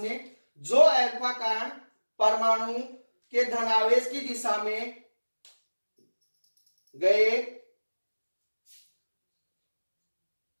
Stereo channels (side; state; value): both; inverted; correlation -1.00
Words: जो अल्फा कण परमाणु के धनावेश की दिशा में गए